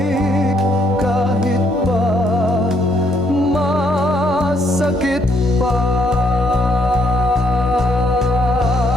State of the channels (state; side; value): normal; both; correlation 0.71